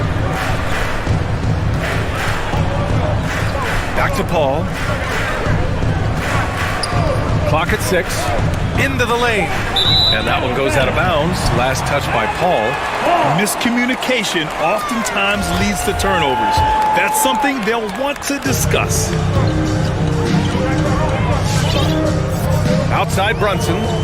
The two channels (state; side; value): identical; both; correlation 1.00